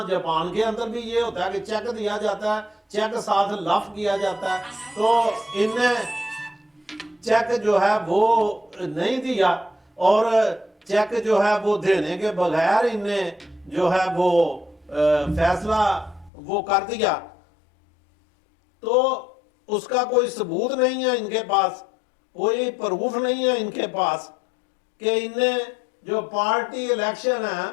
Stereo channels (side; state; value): right; drops out; at 16.3 s